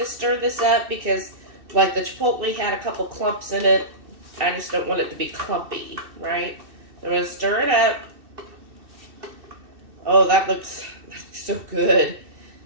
stir this up because like the chipotle had a couple clumps in it. I just don't want it to be clumpy, right? I'm going to stir it up. Oh, that looks so good.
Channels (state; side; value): late; left; 2.6 ms